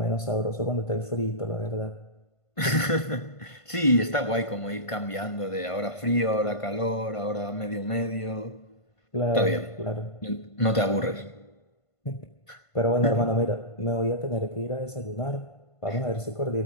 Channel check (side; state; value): right; late; 1.5 ms